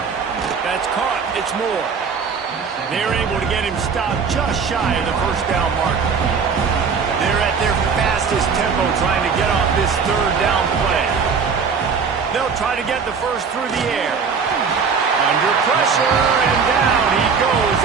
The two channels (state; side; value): quieter; left; 5.7 dB